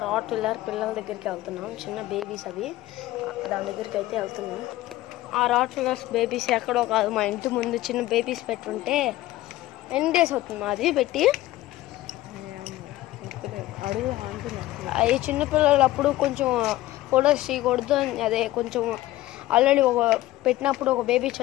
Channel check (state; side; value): quieter; right; 16.3 dB